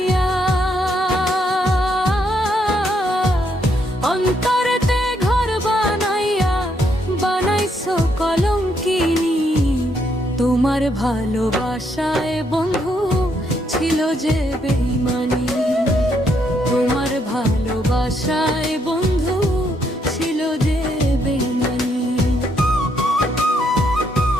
অন্তরেতে ঘর বানাইয়া বানাইছো কলঙ্কিনী। তোমার ভালোবাসায় বন্ধু ছিল যে বেঈমানি, তোমার ভালোবাসায় বন্ধু ছিল যে বেঈমানি।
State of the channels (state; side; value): normal; both; correlation 0.74